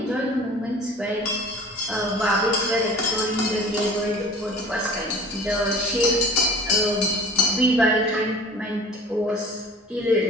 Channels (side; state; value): both; normal; correlation 0.44